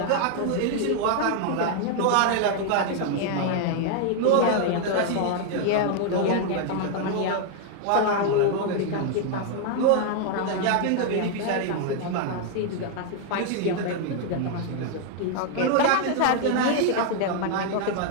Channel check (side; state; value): both; different; correlation 0.00